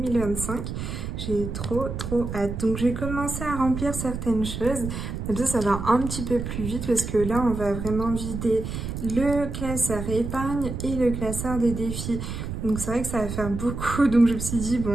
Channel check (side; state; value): right; noise; rumble, 6 dB below the sound